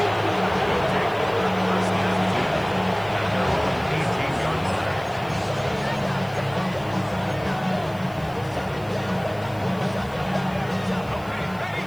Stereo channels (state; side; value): noise; left; hiss, 25 dB below the sound